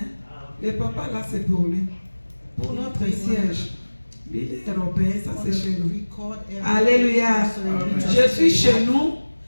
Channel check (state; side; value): inverted; both; correlation -1.00